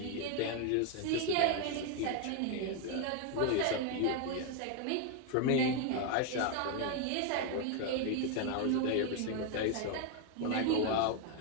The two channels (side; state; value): both; different; correlation 0.01